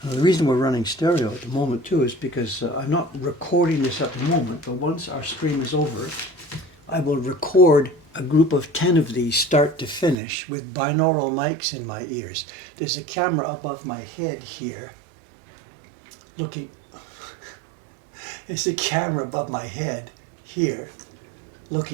The reason we're running stereo at the moment too is because I'm not recording this at the moment, but once our stream is over, I will record a group of 10 of these start to finish with binaural mics in my ears. There's a camera above my head here looking, there's a camera above my head here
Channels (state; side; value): drops out; left; at 10.2 s